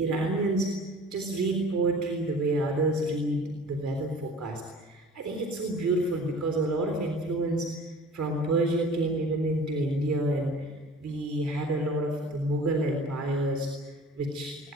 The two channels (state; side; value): normal; both; correlation 0.44